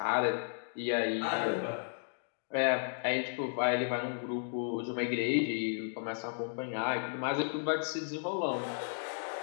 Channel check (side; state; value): right; silent; digital silence